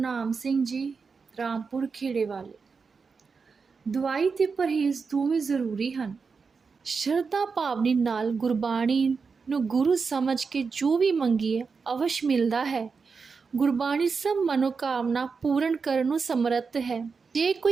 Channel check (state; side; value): quieter; left; 5.1 dB